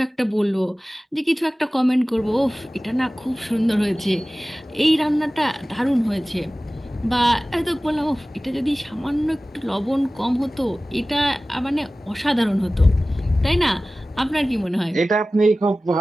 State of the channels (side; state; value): both; normal; correlation 0.97